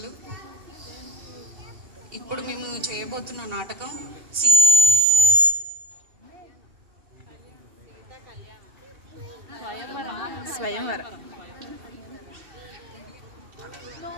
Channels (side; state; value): left; late; 2.7 ms